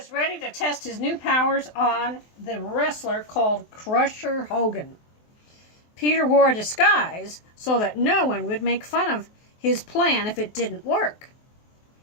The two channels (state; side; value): late; right; 23 ms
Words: ready to test his new powers on the wrestler called Crusher Hogan. Peter wore a disguise so that no one would make fun of his plan if it didn't work.